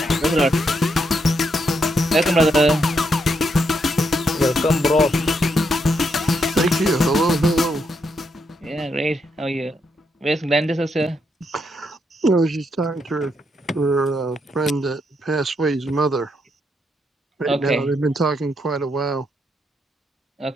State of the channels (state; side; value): normal; both; correlation 0.79